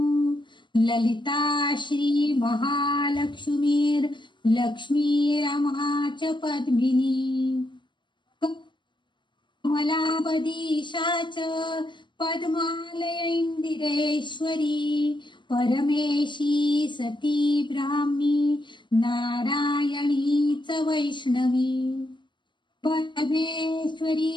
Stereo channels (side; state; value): right; late; 0.22 ms